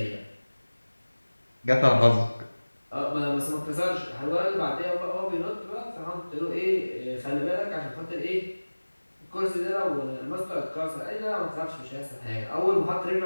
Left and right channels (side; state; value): both; inverted; correlation -1.00